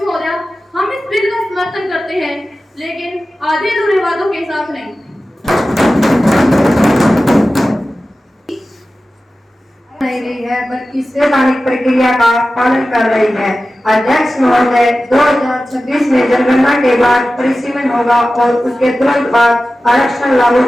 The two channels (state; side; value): normal; both; correlation 0.95